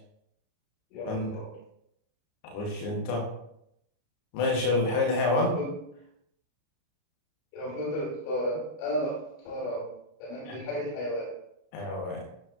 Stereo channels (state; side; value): late; right; 33 ms